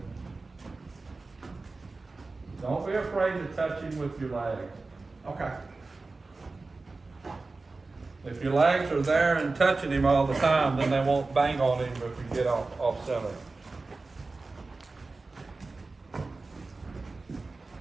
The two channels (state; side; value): quieter; left; 3.6 dB